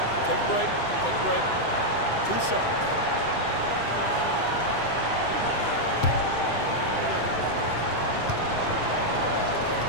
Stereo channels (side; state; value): right; late; 7.8 ms